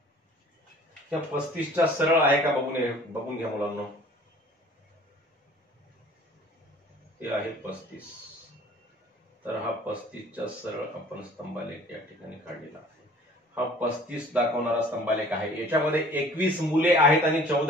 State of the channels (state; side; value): normal; both; correlation 0.50